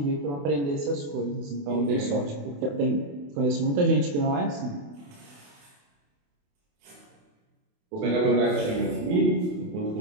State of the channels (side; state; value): left; late; 28 ms